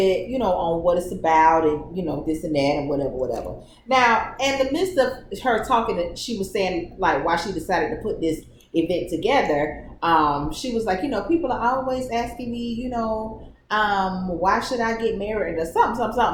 on what it's about and, this and that and whatever. Now, in the midst of her talking, she was saying, like, why she decided to put this event together. She was like, people are always asking me, why should I get married or something.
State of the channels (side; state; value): both; identical; correlation 1.00